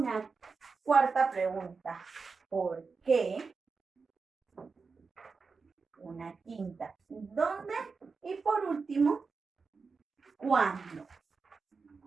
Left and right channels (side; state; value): left; quieter; 4.7 dB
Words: cuarta pregunta, ¿por qué? Una quinta, ¿dónde? Y por último, ¿cuándo?